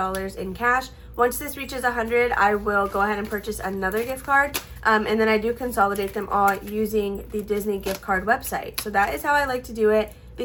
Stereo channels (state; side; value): identical; both; correlation 1.00